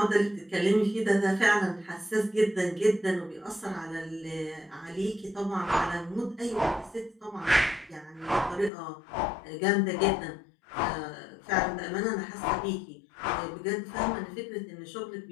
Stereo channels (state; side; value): drops out; right; at 8.7 s